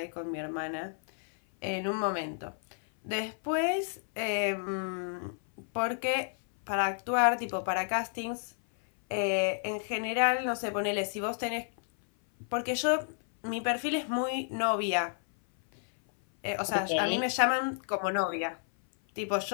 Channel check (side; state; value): right; silent; 56 dB below the other